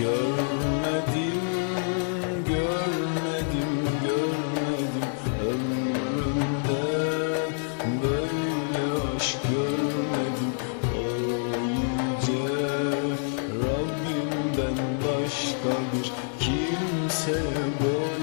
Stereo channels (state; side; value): silent; right; digital silence